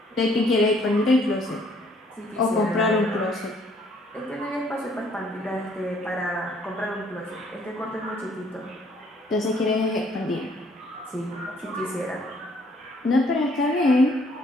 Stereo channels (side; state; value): both; normal; correlation 0.63